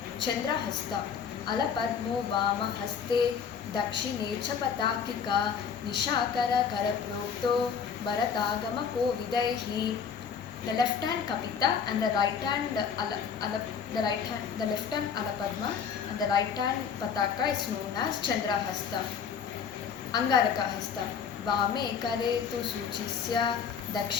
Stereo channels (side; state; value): right; quieter; 6.9 dB